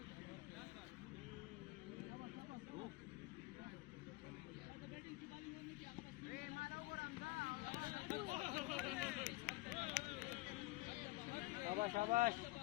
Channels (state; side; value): quieter; right; 21.1 dB